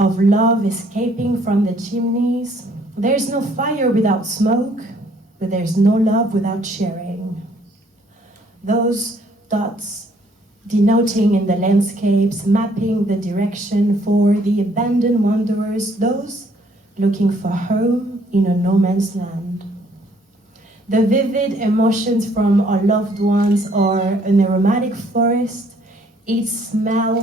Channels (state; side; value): normal; both; correlation 0.63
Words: love escaping from the chimneys. There's no fire without smoke, but there's no love without sharing. Those dots denoting in the landscapes, mapping the direction for the abandoned wanderers, those looking for home in a no man's land. The vivid emotions from our loved ones or an aromatic forest, each